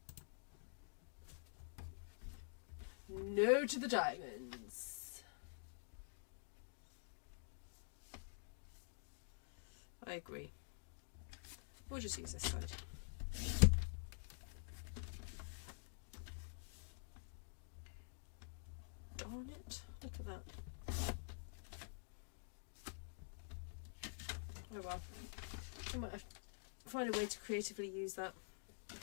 No to the diamonds. I agree. We'll just use this side. Darn it, look at that. Oh well, I might have to find a way to creatively use that.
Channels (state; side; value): silent; right; digital silence